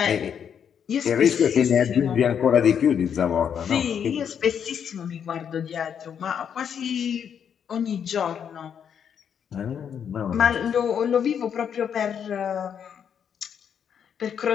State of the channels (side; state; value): right; quieter; 8.0 dB